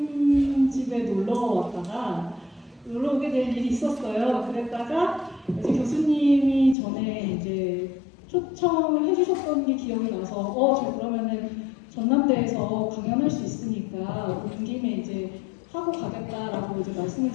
집에 놀러 오게 될 일이 있었어요. 그랬다가 이제 교수님이 전에 이제 초청을 해주셨던 게 기억이 나서 저 그러면은 전남대에서 강연할 수 있으니까 온 김에 이제 하고 가겠다라고 이제 말씀을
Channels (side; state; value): right; drops out; at 6.8 s